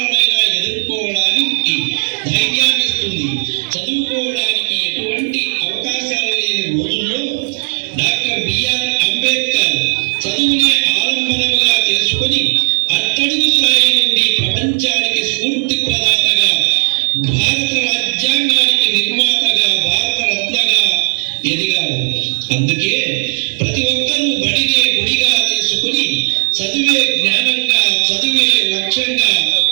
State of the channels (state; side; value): silent; left; 70 dB below the other